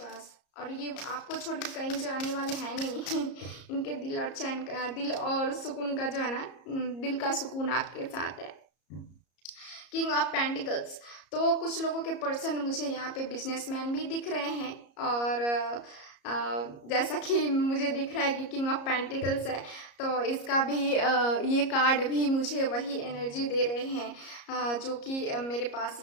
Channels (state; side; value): late; right; 34 ms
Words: और ये आपको छोड़ के कहीं जाने वाले हैं नहीं इनके दिल और चैन का, दिल और सुकून का जो है ना, दिल का सुकून आपके साथ है। किंग ऑफ पेंटिकल्स, तो कुछ लोगों के पर्सन मुझे यहाँ पे बिजनेसमैन भी दिख रहे हैं, और जैसा कि मुझे दिख रहा है कि किंग ऑफ पेंटिकल्स है, तो इसका भी ये कार्ड भी मुझे वही एनर्जी दे रहे हैं जो कि मेरे पास